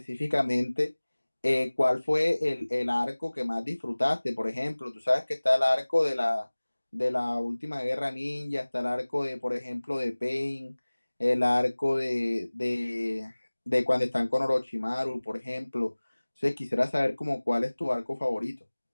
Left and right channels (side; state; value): both; inverted; correlation -1.00